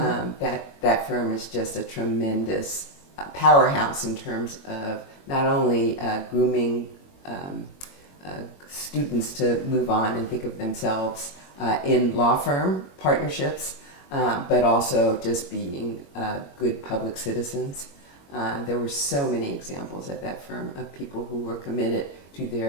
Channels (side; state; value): right; late; 21 ms